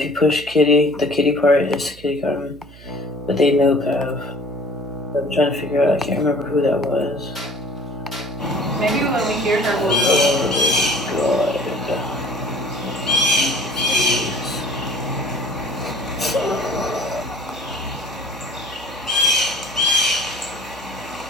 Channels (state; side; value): noise; right; hum, 20 dB below the sound